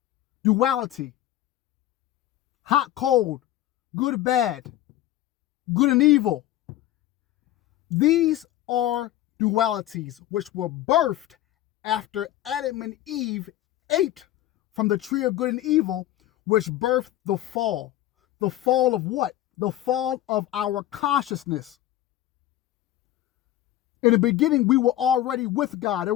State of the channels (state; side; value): quieter; right; 13.9 dB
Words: Duality, hot, cold, good, bad, good and evil. These are dualities which were birthed after Adam and Eve ate from the tree of good and evil, which birthed the fall. The fall of what? The fall of our consciousness. In the beginning, we were already with God. There